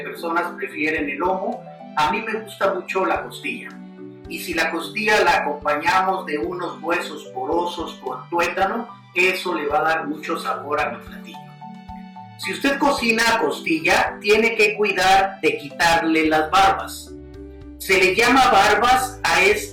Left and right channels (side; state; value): both; identical; correlation 1.00